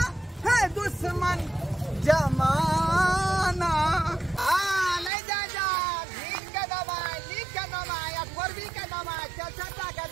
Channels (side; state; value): left; drops out; at 5.1 s